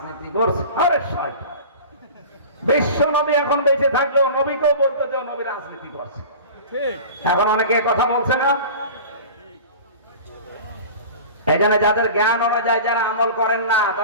করছে। আরে শয়তান, বিশ্ব নবী এখন বেঁচে থাকলেও নবীকেও বলতে যে নবী রাজনীতি করছে। এখন অনেকে কথা বলছে না। এখানে যাদের জ্ঞান অনুযায়ী যারা আমল করেন না,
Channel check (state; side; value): inverted; both; correlation -0.37